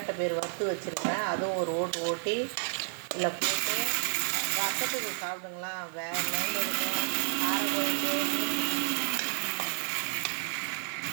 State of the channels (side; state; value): left; silent; digital silence